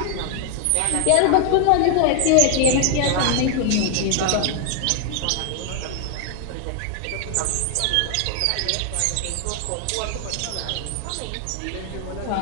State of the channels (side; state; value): both; different; correlation 0.00